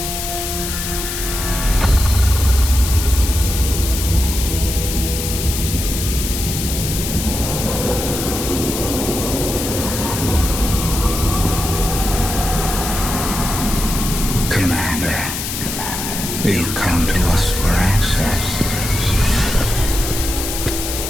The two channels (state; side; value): noise; left; hiss, 5 dB below the sound